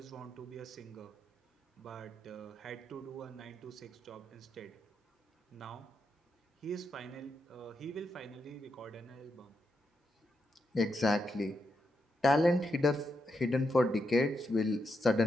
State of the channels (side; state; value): both; normal; correlation 0.83